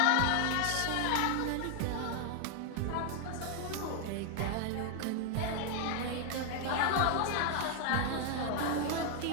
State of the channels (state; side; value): different; both; correlation 0.00